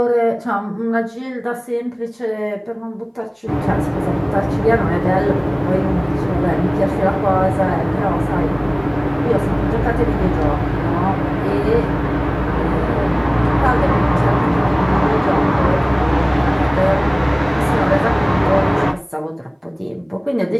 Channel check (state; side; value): identical; both; correlation 1.00